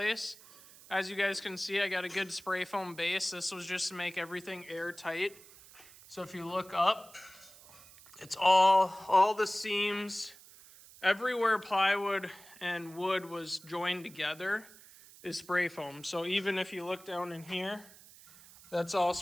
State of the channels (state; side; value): noise; right; hiss, 21 dB below the sound